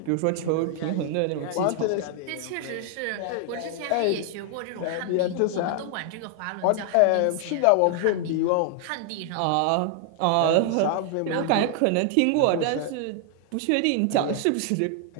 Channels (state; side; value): different; both; correlation 0.00